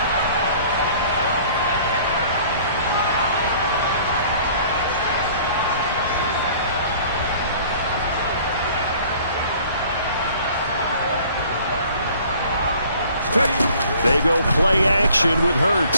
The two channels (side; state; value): both; inverted; correlation -0.52